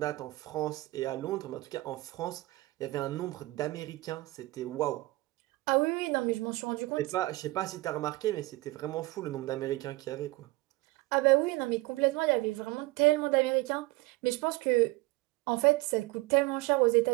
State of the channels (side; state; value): left; quieter; 20.8 dB